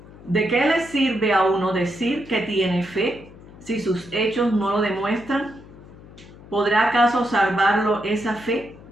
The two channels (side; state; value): left; noise; hum, 20 dB below the sound